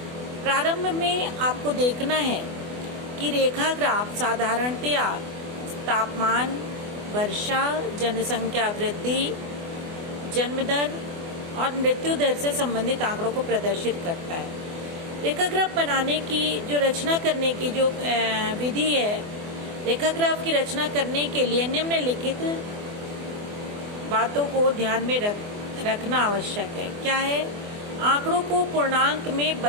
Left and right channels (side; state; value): left; late; 24 ms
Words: प्रारंभ में आपको देखना है कि रेखा ग्राफ साधारणतया तापमान, वर्षा, जनसंख्या वृद्धि, जन्म दर और मृत्यु दर से संबंधित आंकड़ों को प्रदर्शित करता है। रेखा ग्राफ बनाने की जो रचना करने की जो विधि है, रेखा ग्राफ की रचना करने के लिए निम्नलिखित बातों को ध्यान में रखना आवश्यक है। क्या है? आंकड़ों को पूर्णांक में